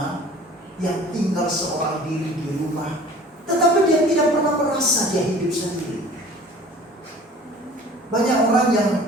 yang tinggal seorang diri di rumah, tetapi dia tidak pernah merasa dia hidup sendiri. Banyak orang yang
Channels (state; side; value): normal; both; correlation 0.47